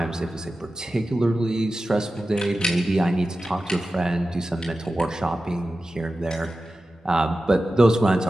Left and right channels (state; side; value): normal; both; correlation 0.94